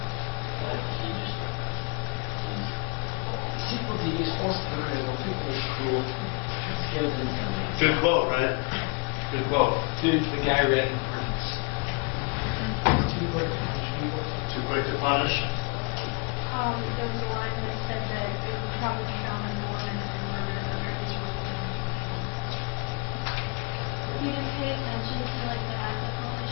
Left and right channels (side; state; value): right; quieter; 33.9 dB